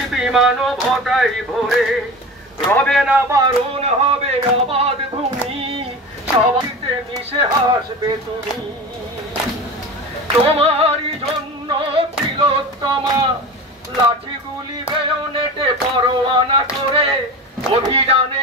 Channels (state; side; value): normal; both; correlation 0.31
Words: মানবতাই ভরে। রবে না বারণ হবে আবাদ ভূমি সবাইতে মিশে হাসবে তুমি। তোমারই জন্য তিলোত্তমা লাঠিগুলি বেয়নেটে পরোয়ানা করে অভিযানে